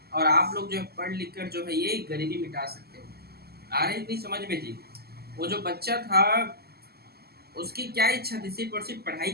और आप लोग जो है पढ़ लिख कर जो है ये गरीबी मिटा सकते हो। आ रही थी समझ में जी? वो जो बच्चा था उसकी क्या इच्छा थी, सिर्फ और सिर्फ पढ़ाई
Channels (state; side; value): late; left; 0.46 ms